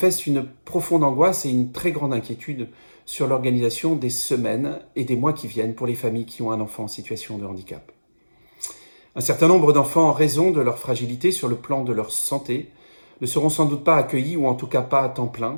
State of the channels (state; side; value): inverted; both; correlation -1.00